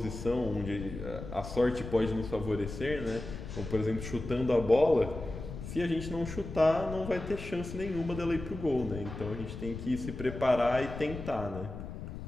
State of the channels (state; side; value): noise; left; rumble, 9 dB below the sound